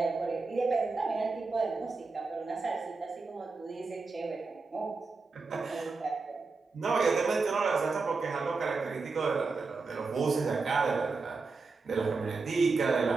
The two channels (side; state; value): left; quieter; 4.2 dB